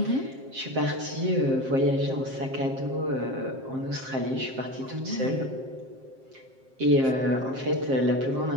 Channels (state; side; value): late; left; 7.6 ms